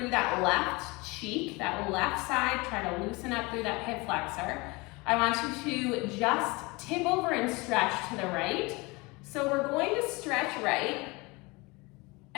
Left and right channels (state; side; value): quieter; right; 25.2 dB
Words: that left cheek, that left side, try to loosen up through that hip flexor. I want you to just tip over and stretch to the right. So we're going to stretch right